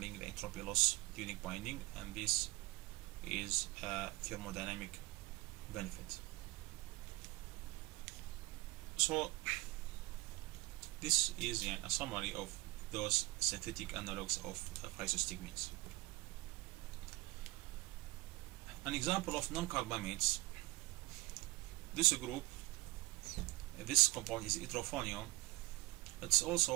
the entropy loss during binding, and this is a thermodynamic benefit. So this is a summary of those synthetic analogs of physostigmines. An example of non-carbamates, this compound is hydrophonium. It's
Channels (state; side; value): quieter; left; 22.3 dB